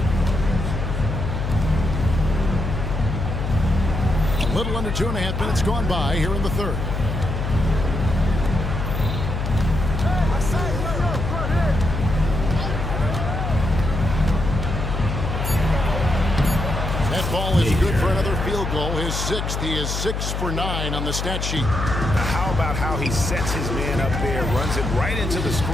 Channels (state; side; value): noise; left; hum, 3 dB below the sound